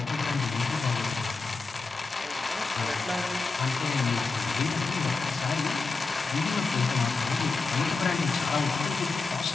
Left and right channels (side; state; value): right; quieter; 4.1 dB